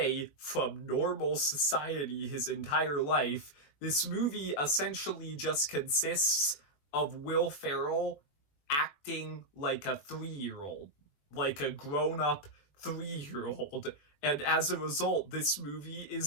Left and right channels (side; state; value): right; late; 21 ms